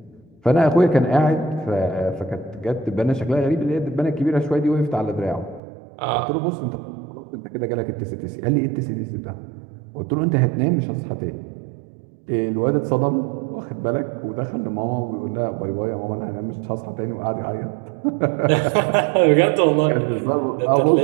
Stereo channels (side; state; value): left; drops out; at 5.6 s